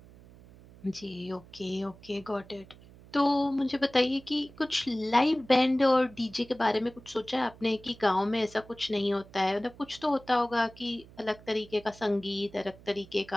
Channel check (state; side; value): noise; right; hum, 22 dB below the sound